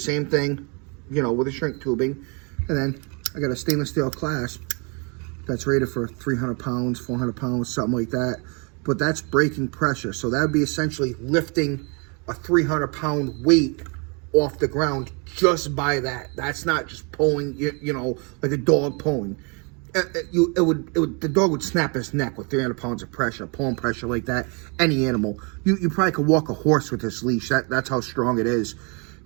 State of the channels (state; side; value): quieter; left; 33.4 dB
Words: thing, you know, with the shrink tubing. And then I got a stainless steel clasp that's rated for 300 pounds, 400 pounds, something like that. But that's breaking pressure. So that would be essentially lifting a 300-pound weight off the ground just by that. That's not just pulling, you know, like a dog pulling. The dog would snap his neck with 300 pounds of pressure, pulling pressure like that. Any animal, you probably could walk a horse with this leash. That's how strong it is.